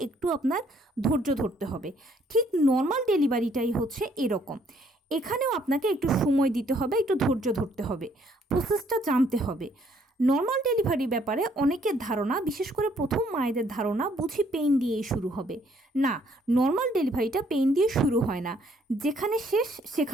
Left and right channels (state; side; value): normal; both; correlation 0.66